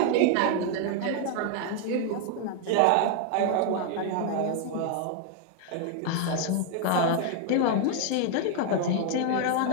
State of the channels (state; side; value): different; both; correlation 0.00